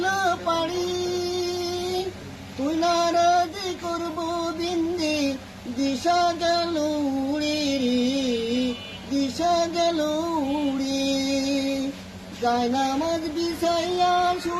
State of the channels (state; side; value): identical; both; correlation 1.00